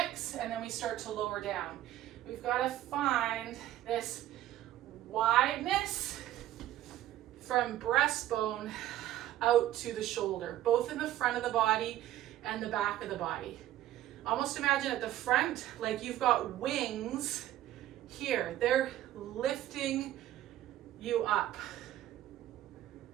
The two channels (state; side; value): quieter; left; 13.6 dB